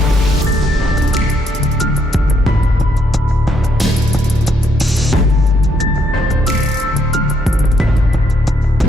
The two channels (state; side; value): normal; both; correlation 0.73